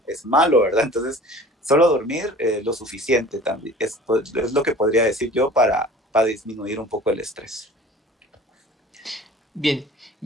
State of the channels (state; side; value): normal; both; correlation 0.44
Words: es malo, ¿verdad? Entonces, solo dormir lo suficiente también es lo que podría decir yo para disminuir un poco el estrés. Bien,